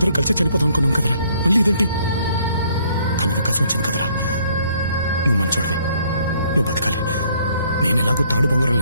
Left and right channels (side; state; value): both; inverted; correlation -0.65